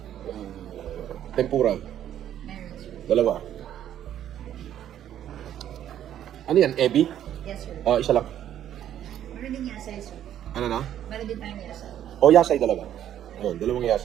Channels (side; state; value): left; quieter; 10.9 dB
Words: Tempura, Meron sir. dalawa. Ano yan, ebi? Yes sir. Isa lang. Meron din yasay sir. Ano na? Meron din tayong yasay. Yasay dalawa. Ayun, 2